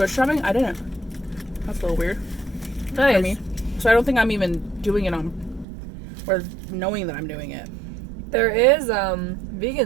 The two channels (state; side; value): drops out; left; at 5.7 s